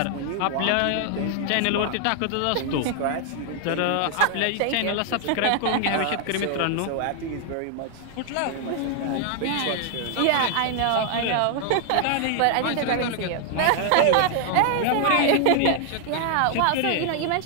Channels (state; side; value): different; both; correlation 0.00